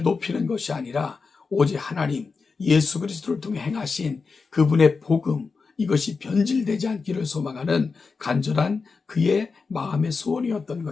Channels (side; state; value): right; quieter; 4.7 dB